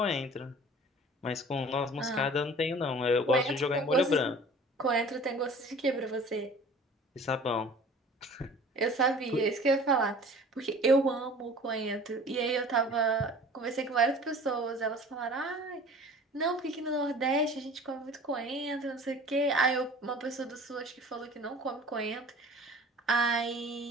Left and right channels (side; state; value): both; normal; correlation 0.45